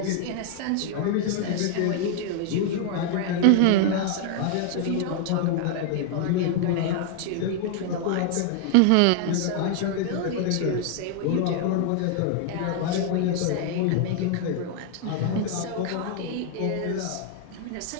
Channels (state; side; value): different; both; correlation 0.00